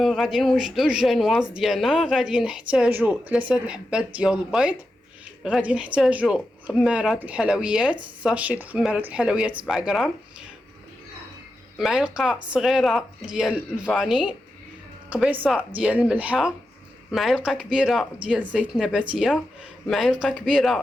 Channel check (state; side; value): normal; both; correlation 0.89